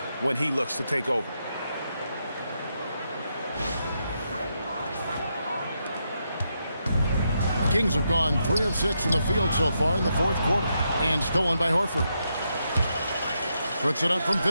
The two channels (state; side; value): inverted; both; correlation -0.82